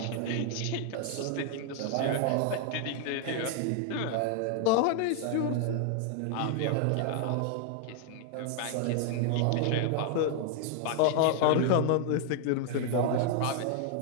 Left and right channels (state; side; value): different; both; correlation 0.00